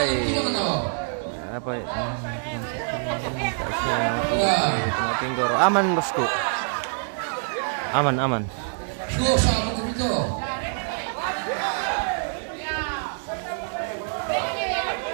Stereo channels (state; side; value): silent; left; digital silence